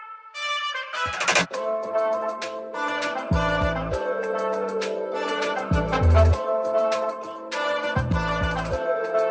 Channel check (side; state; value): both; identical; correlation 1.00